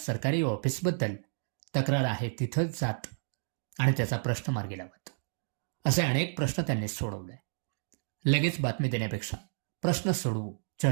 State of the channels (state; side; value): silent; left; digital silence